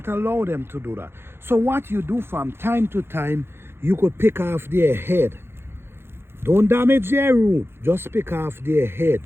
allow them to do that. So what you do from time to time, you could pick off their head. Don't damage their root, just pick off their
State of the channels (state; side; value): late; left; 0.11 ms